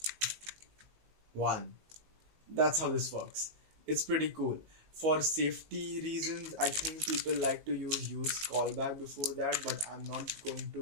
That's how this works. It's pretty cool. For safety reasons, I think people like to use callback before that, but I'm not going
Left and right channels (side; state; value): left; late; 19 ms